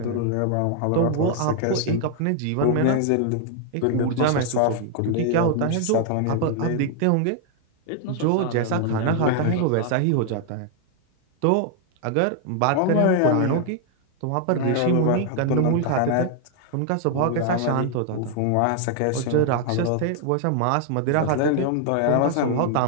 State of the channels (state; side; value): different; both; correlation 0.00